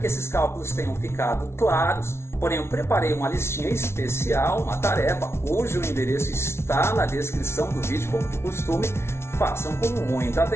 esses cálculos tenham ficado claros, porém eu preparei uma listinha especial, uma tarefa, cujo endereço está na descrição do vídeo, como de costume. Façam com muita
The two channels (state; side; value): late; right; 0.12 ms